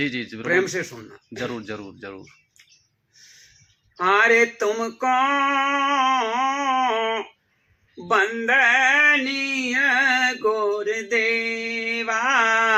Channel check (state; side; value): identical; both; correlation 1.00